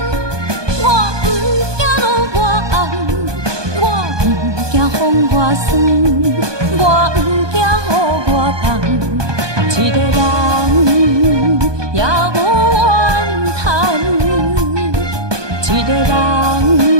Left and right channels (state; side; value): late; left; 1.2 ms